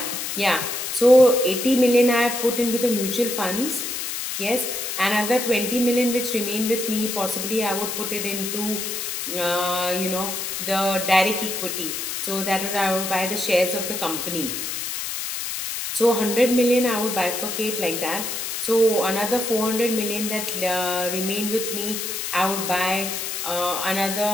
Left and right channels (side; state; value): left; noise; hiss, 4 dB below the sound